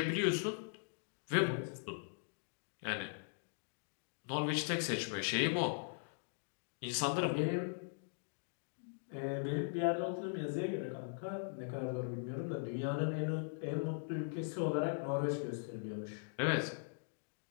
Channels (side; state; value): right; silent; digital silence